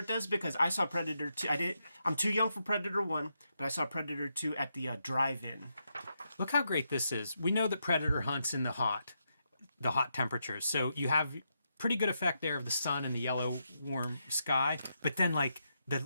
does because I saw Predator 2. I'm too young for Predator 1, but I saw Predator 2 at the drive-in. Look how great this is. We know that Predator hunts in the hot temperatures. So you have pretty good effect there of the sun and the yellow warm sky. But then like the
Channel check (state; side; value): inverted; both; correlation -0.83